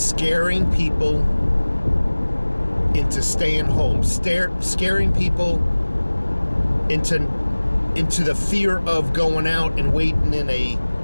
people into staying home, scaring people into the fear of going out and waiting in a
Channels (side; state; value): both; inverted; correlation -1.00